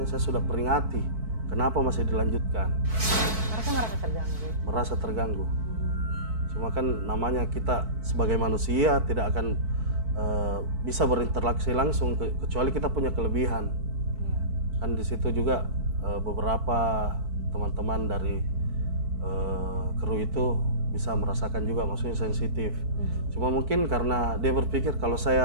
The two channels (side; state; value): left; late; 4.5 ms